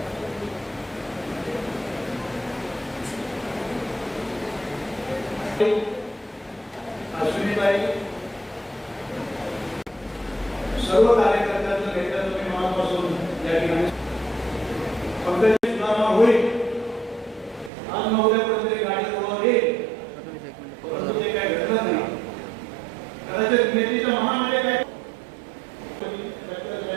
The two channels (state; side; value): drops out; left; at 17.7 s